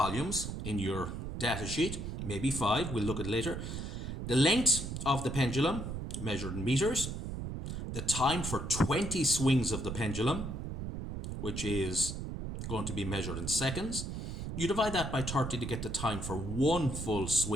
in your data sheet, maybe 5, we'll look at later. The length of the pendulum, measured in meters. The time for 20 swings of the pendulum, which is going to be measured in seconds. You divide that by 30 to get the time for one full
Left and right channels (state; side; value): noise; right; rumble, 5 dB below the sound